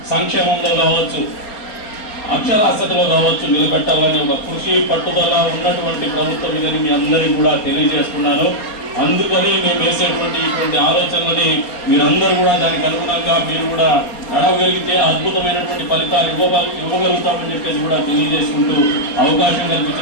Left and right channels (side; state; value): right; late; 4.3 ms